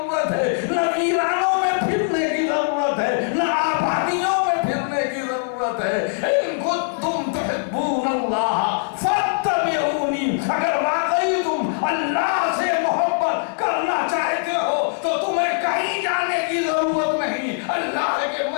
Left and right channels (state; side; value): silent; right; digital silence